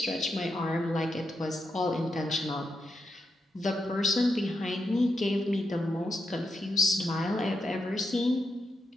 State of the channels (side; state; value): both; normal; correlation 0.85